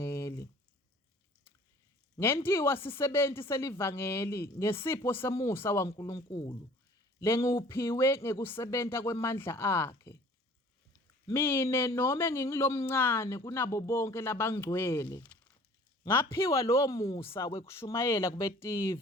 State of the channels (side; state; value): both; normal; correlation 0.50